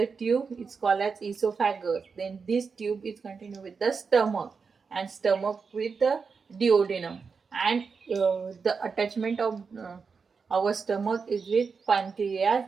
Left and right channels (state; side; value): quieter; left; 5.3 dB